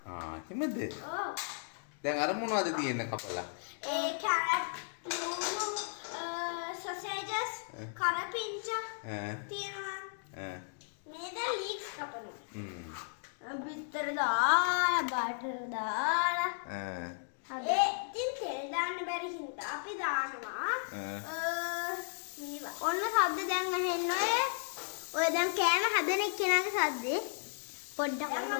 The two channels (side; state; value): right; silent; digital silence